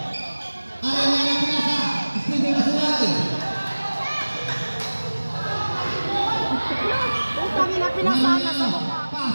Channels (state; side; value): inverted; both; correlation -1.00